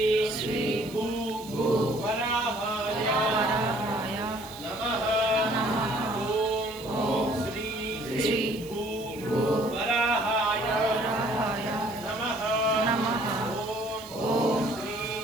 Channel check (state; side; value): noise; right; hiss, 19 dB below the sound